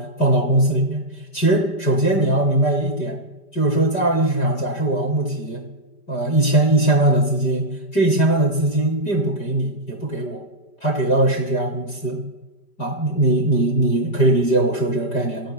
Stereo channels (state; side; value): late; right; 5.1 ms